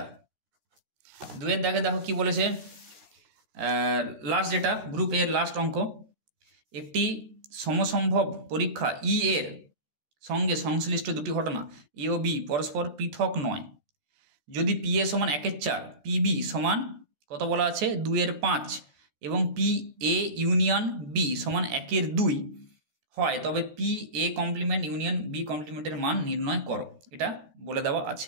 দাগে দেখো কি বলেছে, লাস্ট যেটা গ্রুপ এর লাস্ট অঙ্ক, একটি সমসম্ভব পরীক্ষা ই এর সঙ্গে সংশ্লিষ্ট দুটি ঘটনা এ ও বি পরস্পর পৃথক নয়, যদি পি এ সমান 1 এর 4, পি বি সমান কত বলা আছে 2 এর 5 এবং পি এ ইউনিয়ন বি সমান 1 এর 2 হয়, তবে P A complement union B কমপ্লিমেন্টের মান নির্ণয় করো, এটা বলে দেওয়া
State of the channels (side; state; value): left; late; 14 ms